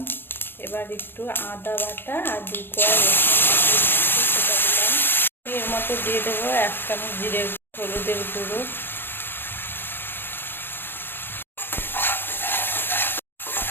এবার একটু আদা বাটা আর 2 কোয়া রসুন সেটা দিলাম। এর মধ্যে দিয়ে দেবো 1 চামচ জিরে হলুদের গুঁড়ো,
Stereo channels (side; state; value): right; late; 0.10 ms